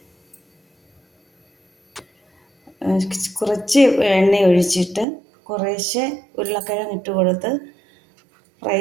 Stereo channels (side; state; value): left; drops out; at 5.1 s